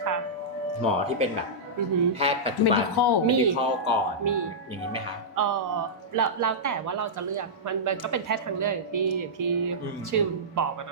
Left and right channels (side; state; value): both; normal; correlation -0.13